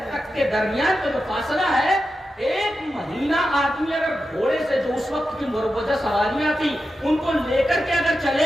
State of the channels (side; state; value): both; normal; correlation 0.90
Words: تک کے درمیان کا جو فاصلہ ہے, ایک مہینہ آدمی اگر گھوڑے سے جو اس وقت کی مروجہ سواریاں تھی ان کو لے کر کے اگر